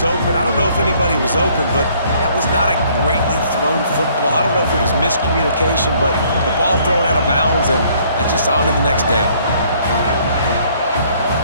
open. I don't know if anybody was open, but that was not a greatly thrown football. I don't know if it was miscommunication, but the ball thrown out of bounds and just on to the next down.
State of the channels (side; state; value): both; inverted; correlation -0.62